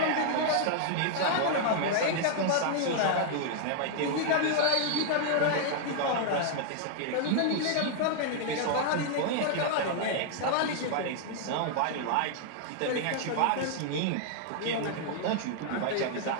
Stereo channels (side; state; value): both; different; correlation 0.00